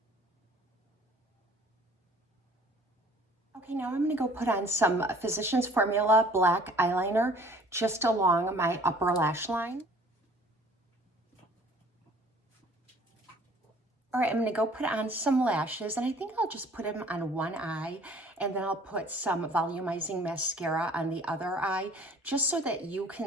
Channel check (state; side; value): normal; both; correlation 0.53